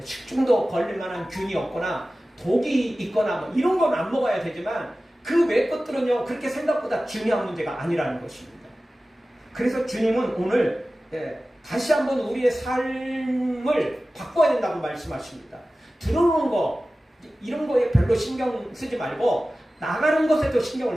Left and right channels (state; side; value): normal; both; correlation 0.96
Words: 식중독 걸릴 만한 균이 없거나 독이 있거나 뭐 이런 건 안 먹어야 되지만 그 외 것들은요 그렇게 생각보다 중요한 문제가 아니라는 것입니다. 그래서 주님은 오늘 다시 한번 우리의 삶을 바꿔야 된다고 말씀하십니다. 들어오는 거 이런 거에 별로 신경 쓰지 말고 나가는 것에도